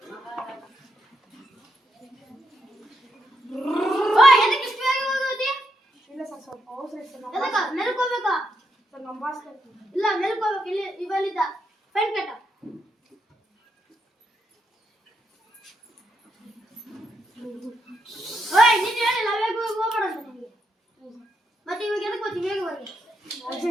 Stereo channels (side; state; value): both; normal; correlation 0.80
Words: ಎದಕ್ಕೆ ಇಷ್ಟು ಬೇಗ ಹೋಗೋದಿ? ಇಲ್ಲ ಸರ್, ಸ್ವಲ್ಪ ಅವಸರ ಇತ್ತು. ಎದಕ್ಕೆ ಮೆಲ್ಕೋಬೇಕಾ? ಸರ್ ನಮ್ಮ ಬಾಸ್ ಕರ್ತೀನಿ. ಇಲ್ಲ ಮೆಲ್ಕೋಬೇಕು. ಇಲ್ಲಿ ಇವಲ್ಲಿದ್ದ ಫೈನ್ ಕಟ್ಟ. ನೀನು ಹೇಳಿಲ್ಲ ಬೇಗ ಹೋಗ್ಬೇಡ ಅಂತ ನಿಮಗೆ. ಮತ್ತೆ ಇವಾಗ ಎದಕ್ಕೆ ಹೋಗ್ತಿ ಬೇಗ ಹೋಗಿ?